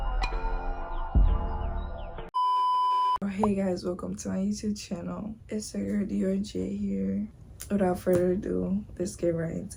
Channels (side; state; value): both; identical; correlation 1.00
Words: my. Hey guys, welcome to my YouTube channel. It's your girl J here. Without further ado, let's get right